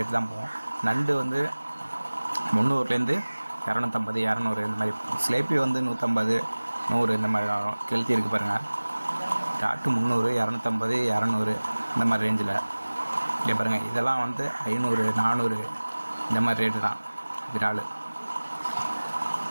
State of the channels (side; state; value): both; inverted; correlation -1.00